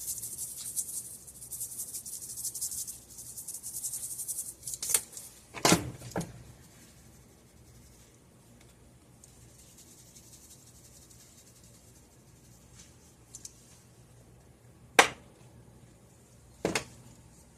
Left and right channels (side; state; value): both; identical; correlation 1.00